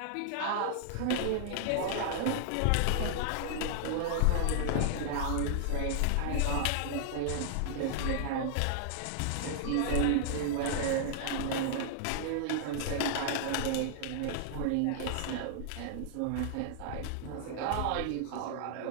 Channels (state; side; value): different; both; correlation -0.01